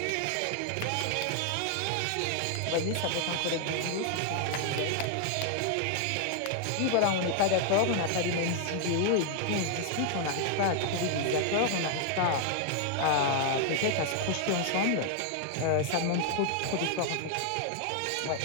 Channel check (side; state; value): both; different; correlation 0.00